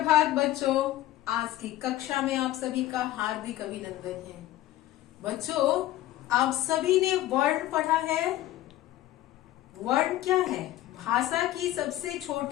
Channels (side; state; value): right; quieter; 14.6 dB